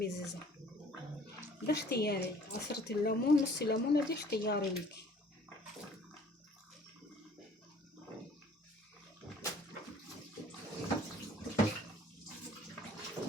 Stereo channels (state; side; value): normal; both; correlation 0.54